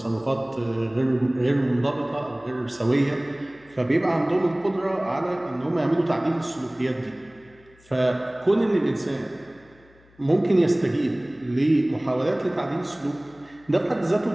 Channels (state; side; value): noise; left; hum, 29 dB below the sound